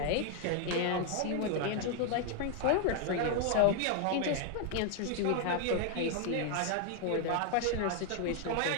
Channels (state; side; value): different; both; correlation 0.00